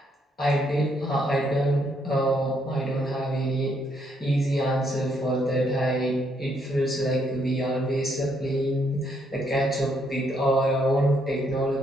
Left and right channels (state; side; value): normal; both; correlation 0.73